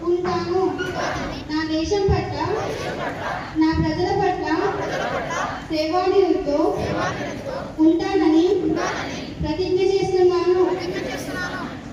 ఉంటాను. నా దేశం పట్ల, నా ప్రజల పట్ల సేవానిరతితో ఉంటానని ప్రతిజ్ఞ చేస్తున్నాను.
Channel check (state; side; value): identical; both; correlation 1.00